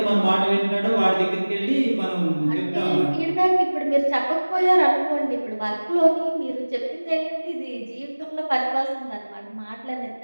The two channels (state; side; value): inverted; both; correlation -1.00